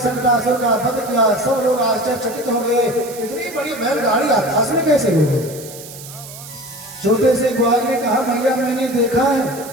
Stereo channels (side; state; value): right; noise; hiss, 15 dB below the sound